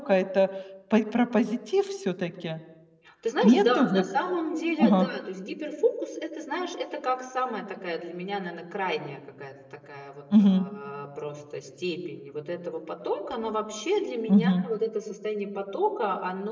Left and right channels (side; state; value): both; identical; correlation 1.00